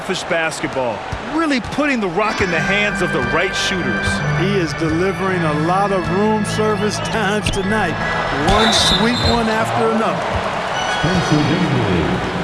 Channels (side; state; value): both; identical; correlation 1.00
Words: basketball, really putting the rock in the hands of the right shooters. He is delivering a lot of room service times tonight. One sweet one after another. Spencer Dinwiddie,